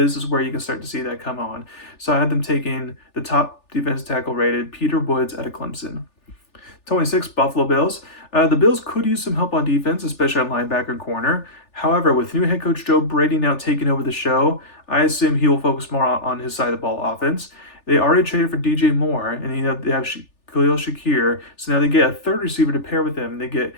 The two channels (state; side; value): late; right; 3.4 ms